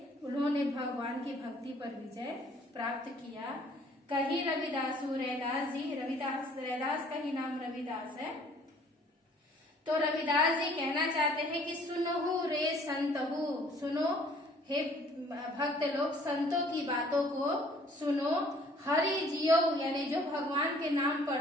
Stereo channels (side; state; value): both; normal; correlation 0.57